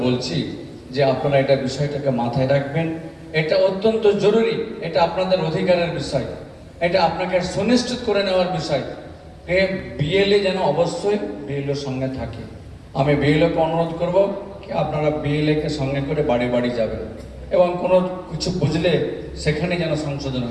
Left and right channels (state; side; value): identical; both; correlation 1.00